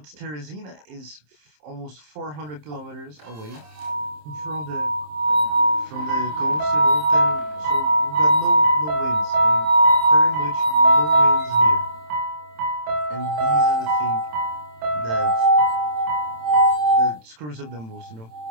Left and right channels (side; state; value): left; late; 27 ms